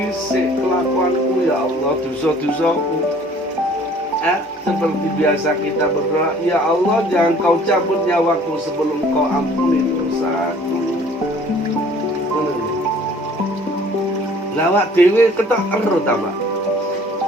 kelakuanku ya Allah, dosa-dosaku. Seperti biasa kita berdoa, ya Allah, jangan kau cabut nyawaku sebelum kau ampuni dosaku. Lawak dewe ketok ero ta, Pak.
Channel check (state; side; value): normal; both; correlation 0.53